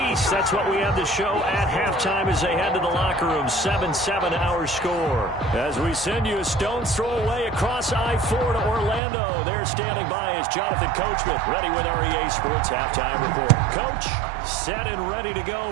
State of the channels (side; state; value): left; drops out; at 9.0 s